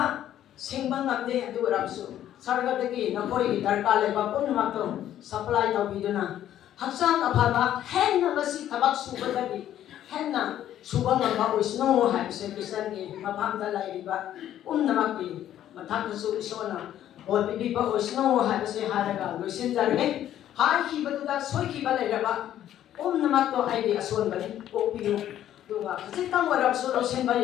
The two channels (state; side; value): quieter; right; 11.6 dB